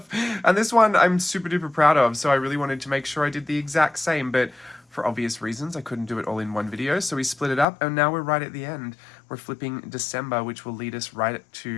And this one I'm super duper proud of. So I really wanted to make sure I did the exact same, but for obvious reasons, I couldn't do it all in one video. So we split it up and now we're right at the end. We're flipping December, which will lead us right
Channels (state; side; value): drops out; right; at 7.7 s